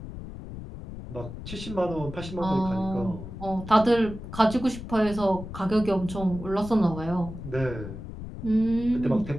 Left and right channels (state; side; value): noise; left; rumble, 11 dB below the sound